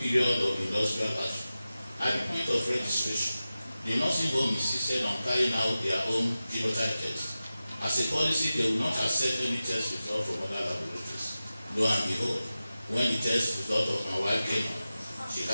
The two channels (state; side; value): inverted; both; correlation -0.95